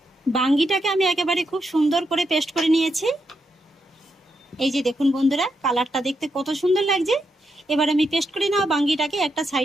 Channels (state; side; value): normal; both; correlation 0.82